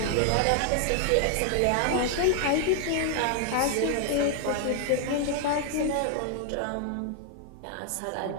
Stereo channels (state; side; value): different; both; correlation 0.00